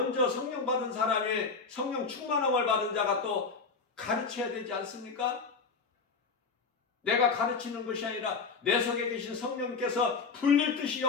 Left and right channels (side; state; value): right; quieter; 4.8 dB